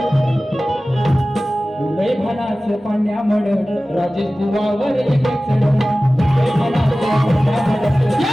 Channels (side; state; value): both; normal; correlation 0.96